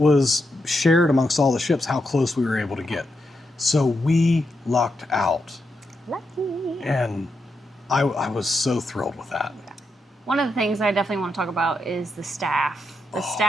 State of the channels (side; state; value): both; normal; correlation 0.84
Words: shared amongst all the ships how close we were able to get. So we lucked out. Lucky. And I was so thrilled with that. One of the things I definitely want to talk about is the staff. The